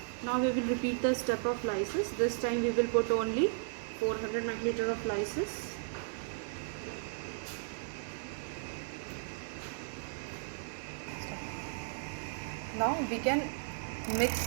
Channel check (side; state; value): left; silent; digital silence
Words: Now we will repeat the step of lysis. This time we will put only 400 microliter of lysis. Now we can mix